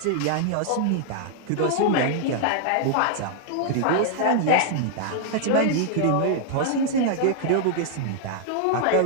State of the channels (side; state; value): both; different; correlation -0.01